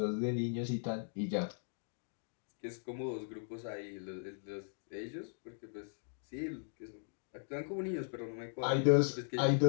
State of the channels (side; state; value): right; silent; digital silence